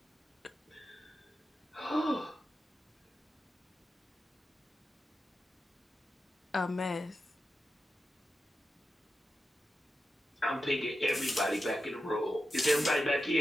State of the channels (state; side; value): normal; both; correlation 0.90